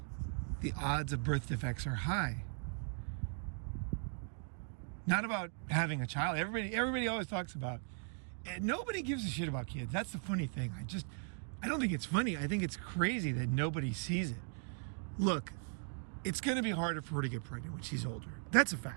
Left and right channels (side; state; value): left; silent; 52 dB below the other